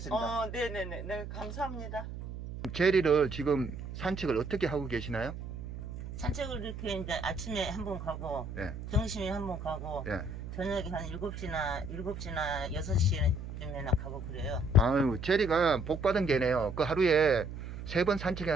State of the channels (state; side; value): noise; right; hum, 9 dB below the sound